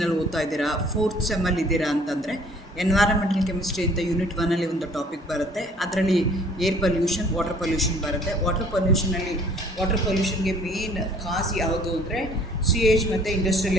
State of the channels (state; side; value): normal; both; correlation 0.55